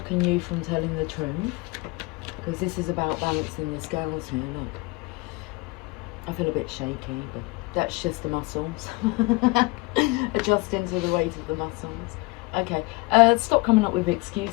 you from telling the truth? Because this is about balancing the scales here. Look, I feel a bit shaky, but that's just the muscles. Adjusting to the weight of the muscles. Okay, stop coming up with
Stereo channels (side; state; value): right; quieter; 24.2 dB